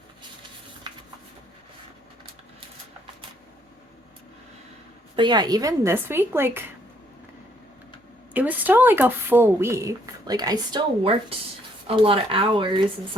But yeah, even this week, like, it was still like a full week. Like, I still worked a lot of hours and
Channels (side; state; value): both; normal; correlation 0.68